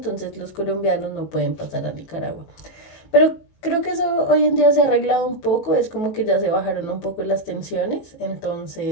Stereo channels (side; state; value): right; late; 19 ms